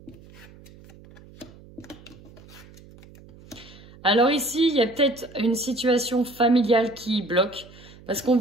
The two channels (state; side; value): noise; right; hum, 22 dB below the sound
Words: Alors ici, il y a peut-être une situation familiale qui bloque, parce qu'on